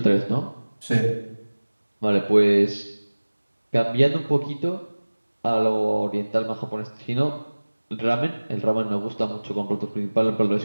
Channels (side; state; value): both; inverted; correlation -1.00